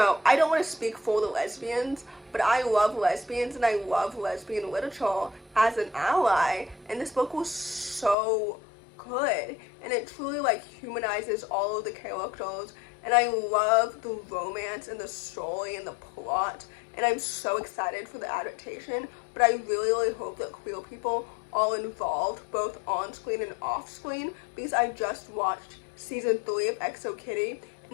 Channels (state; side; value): drops out; right; at 8.2 s